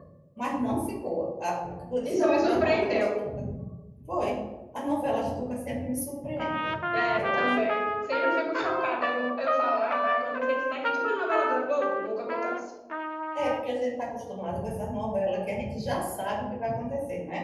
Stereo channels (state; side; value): identical; both; correlation 1.00